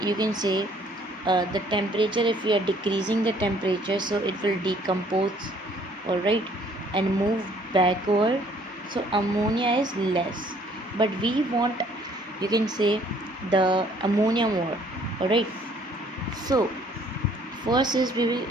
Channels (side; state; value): both; normal; correlation 0.60